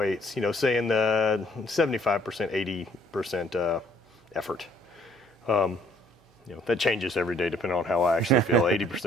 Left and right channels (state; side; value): normal; both; correlation 0.63